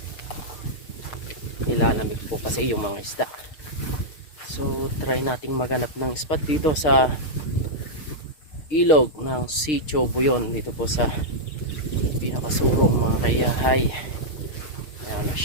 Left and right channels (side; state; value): right; late; 6.5 ms